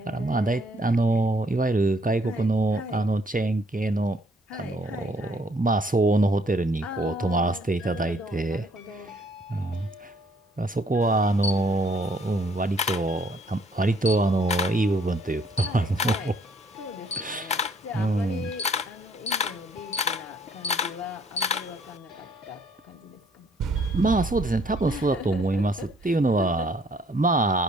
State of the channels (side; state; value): both; normal; correlation 0.64